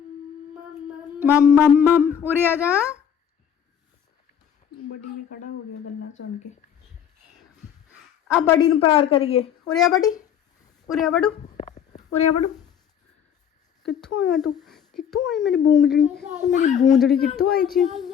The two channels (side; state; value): right; quieter; 8.5 dB